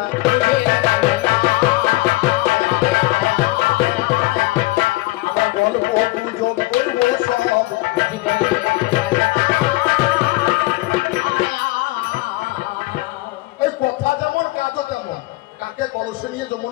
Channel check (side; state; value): right; quieter; 20.7 dB